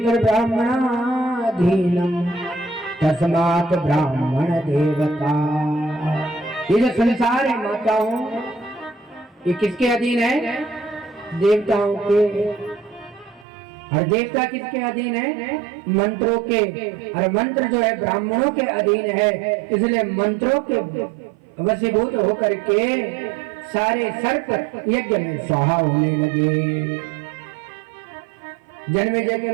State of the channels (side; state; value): left; drops out; at 13.5 s